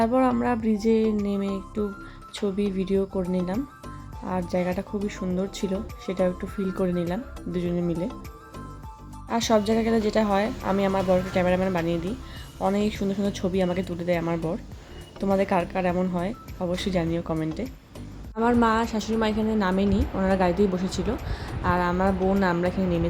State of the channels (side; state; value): both; identical; correlation 1.00